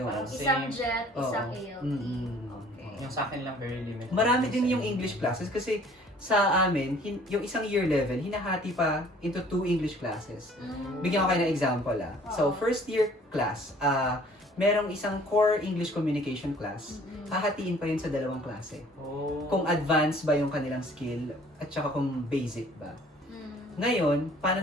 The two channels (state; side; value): normal; both; correlation 0.54